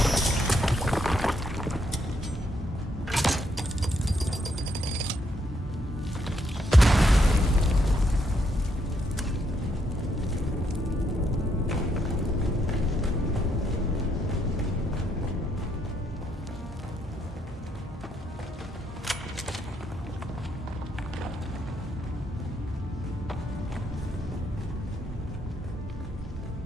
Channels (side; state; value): both; normal; correlation 0.75